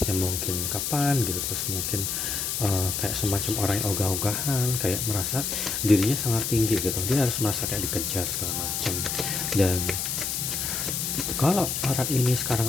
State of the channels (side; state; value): left; noise; hiss, 1 dB below the sound